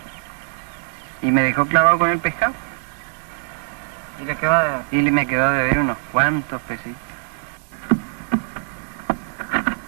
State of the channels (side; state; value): left; silent; digital silence